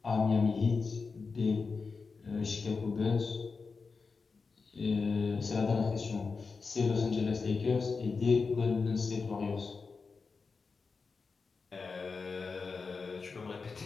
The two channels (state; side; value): quieter; right; 4.6 dB